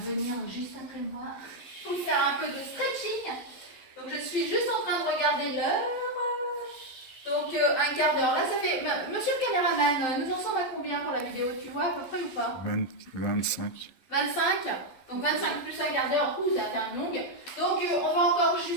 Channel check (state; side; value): late; right; 11 ms